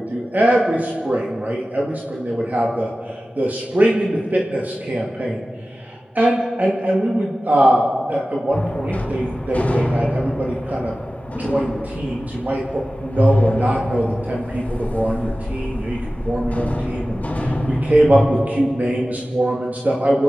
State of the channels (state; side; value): normal; both; correlation 0.96